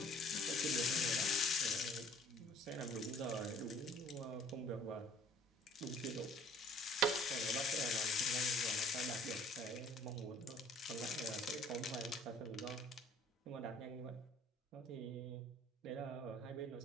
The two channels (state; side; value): normal; both; correlation 0.54